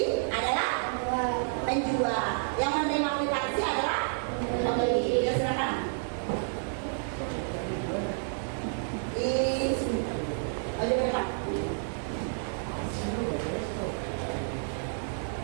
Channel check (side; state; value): left; silent; 58 dB below the other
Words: adalah penjual. Yang menerima kwitansi adalah pembeli. Ya, silakan. Ayo berdekat.